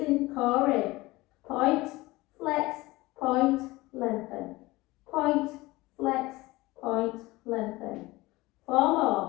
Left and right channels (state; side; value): quieter; right; 20.4 dB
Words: core in. Point, flex, point, lengthen. Point, flex, point, lengthen. 4